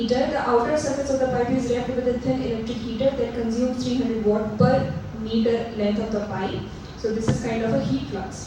outer surface of the pipe is wrapped with a thin electric heater that consumes 300 watt per meter length of the pipe. So this is kind of a heat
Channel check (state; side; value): identical; both; correlation 1.00